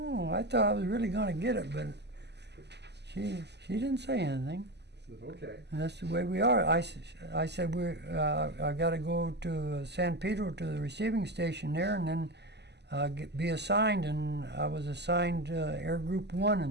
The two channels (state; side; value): late; left; 0.50 ms